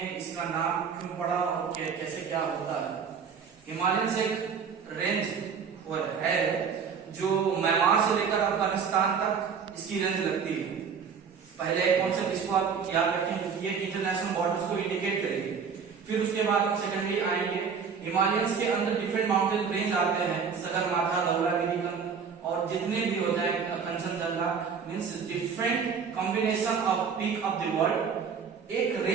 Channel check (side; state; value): left; quieter; 6.3 dB